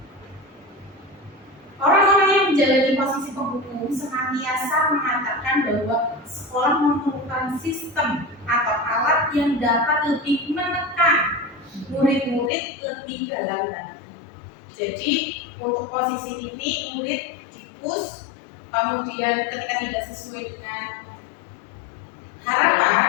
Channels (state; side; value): drops out; right; at 12.5 s